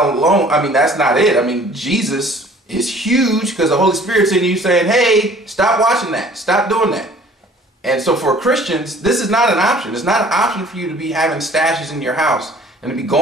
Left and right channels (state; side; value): normal; both; correlation 0.52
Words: alone, I mean, that's not it. I mean, Jesus is huge because the Holy Spirit's in you saying, hey, stop watching that. Stop doing that. And so for Christians, this is not an option. It's not an option for you to be having stashes in your house and to be